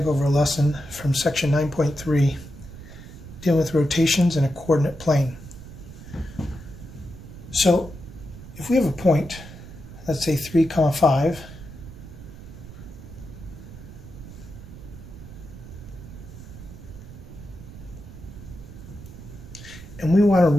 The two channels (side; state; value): right; noise; rumble, 15 dB below the sound